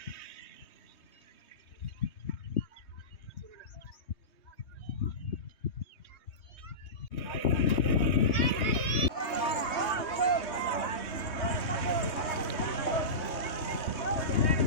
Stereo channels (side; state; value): right; late; 3.2 ms